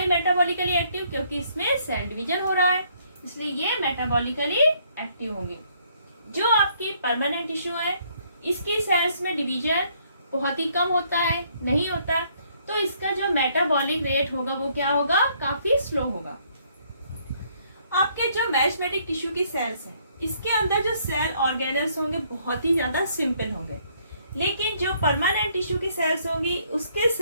मेटाबॉलिकली एक्टिव, क्योंकि इसमें सेल डिवीजन हो रहा है, इसलिए ये मेटाबॉलिकली एक्टिव होंगी। जो आपकी परमानेंट टिश्यू है, इसकी सेल्स में डिवीजन बहुत ही कम होता है, नहीं होता, तो इसका जो मेटाबॉलिक रेट होगा वो क्या होगा, काफी स्लो होगा। आपके जो मेरिस्टेमेटिक टिश्यू की सेल्स हैं, इसके अंदर जो सेल ऑर्गेनल्स होंगे बहुत ही ज्यादा सिंपल होंगे। लेकिन जो परमानेंट टिश्यू की सेल्स होंगी उसके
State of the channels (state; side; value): inverted; both; correlation -0.67